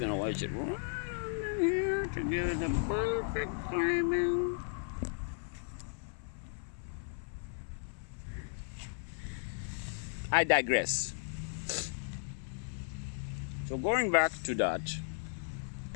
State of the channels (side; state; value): right; silent; 54 dB below the other